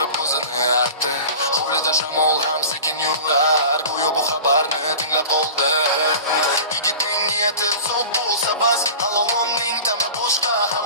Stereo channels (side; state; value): both; inverted; correlation -0.36